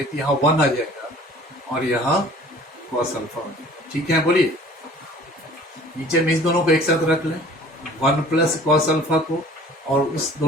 तो यहाँ 1 आ जाएगा और यहाँ कॉस अल्फा आ जाएगा, ठीक है। बोलिए नीचे में इस दोनों को एक साथ रख लें, 1 प्लस कॉस अल्फा को, और उस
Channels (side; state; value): both; normal; correlation 0.49